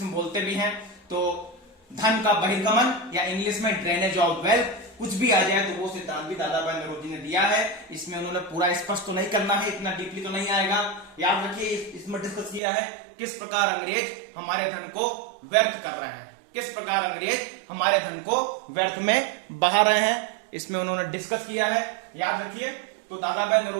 में बोलते भी हैं। तो धन का बहिर्गमन या इंग्लिश में ड्रेनेज ऑफ वेल्थ, कुछ भी आ जाए तो वो सिद्धांत भी दादा भाई नौरोजी ने दिया है। इसमें उन्होंने पूरा स्पष्ट तो नहीं करना है, इतना डीपली तो नहीं आएगा। याद रखिए, इसमें डिस्कस किया है किस प्रकार अंग्रेज हमारे धन को व्यर्थ कर रहे हैं, किस प्रकार अंग्रेज हमारे धन को व्यर्थ में बहा रहे हैं, इसमें उन्होंने डिस्कस किया है। याद रखिए, तो दादा भाई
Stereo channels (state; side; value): drops out; left; at 12.6 s